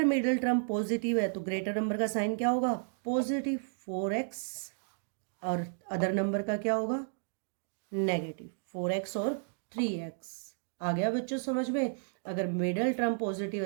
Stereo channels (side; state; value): left; silent; digital silence